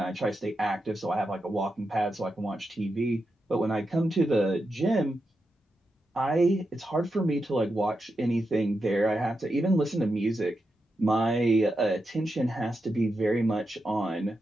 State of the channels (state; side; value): normal; both; correlation 0.87